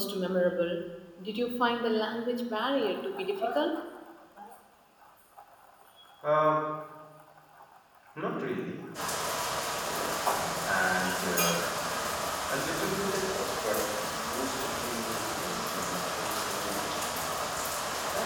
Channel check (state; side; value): identical; both; correlation 1.00